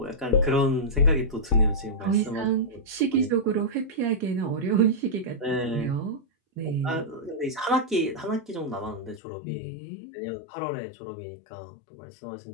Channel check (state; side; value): drops out; right; at 9.2 s